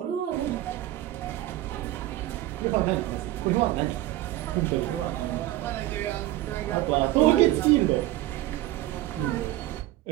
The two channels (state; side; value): quieter; left; 15.5 dB